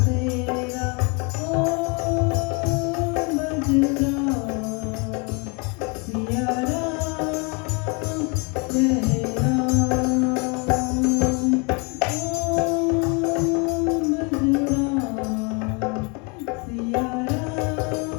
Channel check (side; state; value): right; quieter; 32.2 dB